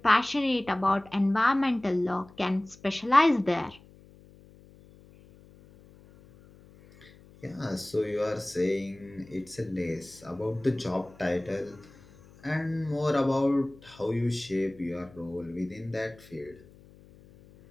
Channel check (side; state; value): left; noise; hum, 24 dB below the sound